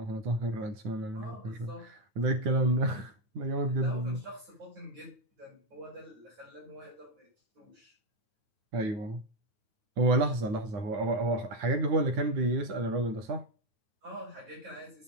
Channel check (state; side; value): late; left; 9.3 ms